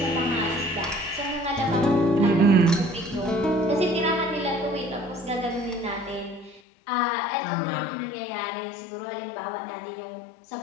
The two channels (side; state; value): right; drops out; at 6.6 s